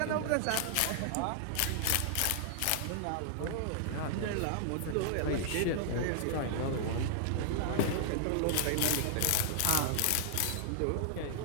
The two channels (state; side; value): different; both; correlation -0.01